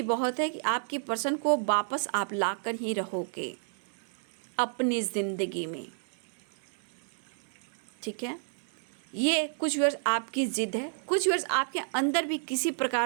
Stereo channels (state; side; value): silent; left; digital silence